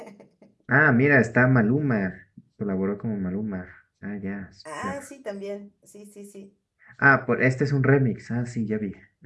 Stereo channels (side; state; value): both; identical; correlation 1.00